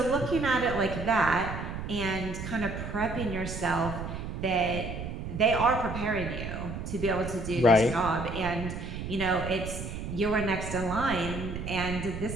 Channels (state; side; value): noise; right; rumble, 6 dB below the sound